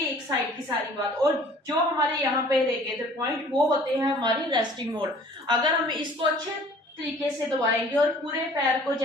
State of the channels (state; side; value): normal; both; correlation 0.51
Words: एक साइड की सारी बात। और जो हमारे यहाँ पे रह गए थे पॉइंट वो होते हैं हमारी रेस्टिंग मोड। अगर हम इसको अच्छे तरीके से दबाएंगे और पूरे पैर को,